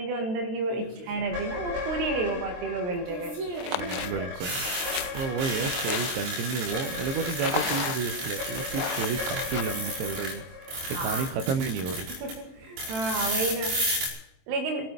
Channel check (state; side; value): late; left; 23 ms